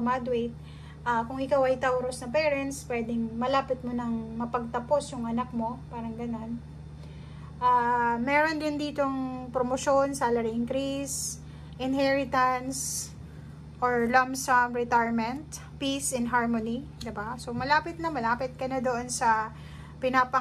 Kung ikaw ay Taurus na parents, pwedeng malapit mo nang mapagtapos yung anak mo, parang ganon. Meron din ditong promotion, salary increase, inheritance, or lump sum retirement, peace and harmony, diba? So, malapit ka na doon sa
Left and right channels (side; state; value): both; identical; correlation 1.00